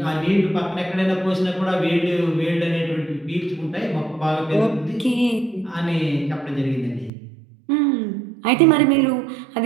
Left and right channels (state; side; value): drops out; left; at 7.1 s